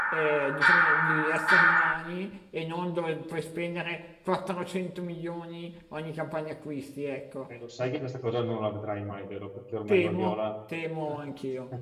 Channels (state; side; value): identical; both; correlation 1.00